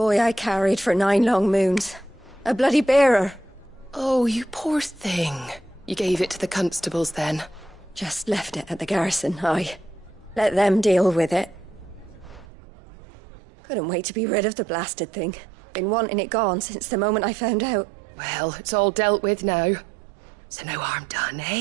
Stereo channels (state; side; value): drops out; left; at 12.5 s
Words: I carried for 9 long moons. A bloody bearer. Oh, you poor thing. You gave it to the constables then? Just left it at the garrison, aye. Let them deal with it. Couldn't wait to be rid of the blasted thing. Been wanting it gone since the moment I found out. Well, it's all dealt with now. So no harm done,